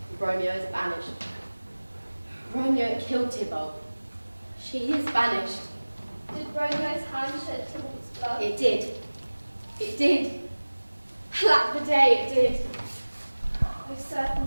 Romeo is banished. Romeo killed Tybalt. She is banished. Did Romeo's hand shed Tybalt's blood? It did. It did. Alack the day, it did. O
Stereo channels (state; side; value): inverted; both; correlation -1.00